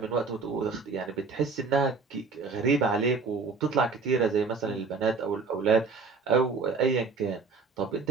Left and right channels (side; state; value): left; quieter; 4.6 dB